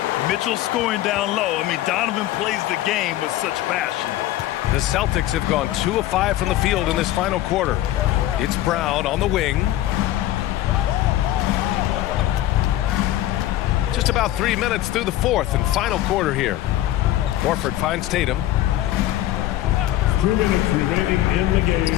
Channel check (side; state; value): right; quieter; 14.3 dB